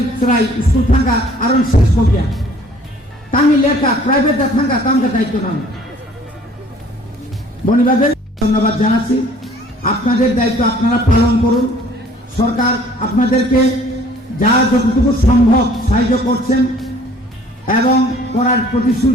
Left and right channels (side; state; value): both; normal; correlation 0.55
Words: সরাই স্কুল থাকা আরো শেষ কবিয়া তামি লেখা প্রাইভেট থাকা তামকে দায়িত্ব না বনিবাদের ধন্যবাদ জানাচ্ছি আপনাদের দায়িত্ব আপনারা পালন করুন সরকার আপনাদেরকে যা যতটুকু সম্ভব সাহায্য করছেন এবং করার